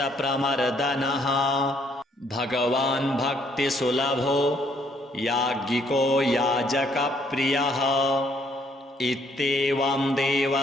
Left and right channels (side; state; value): both; normal; correlation 0.67